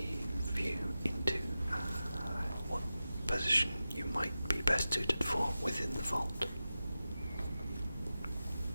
view into what position you might be best suited for within the vault.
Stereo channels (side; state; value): both; inverted; correlation -0.93